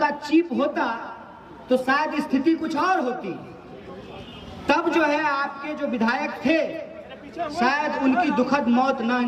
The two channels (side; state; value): both; identical; correlation 1.00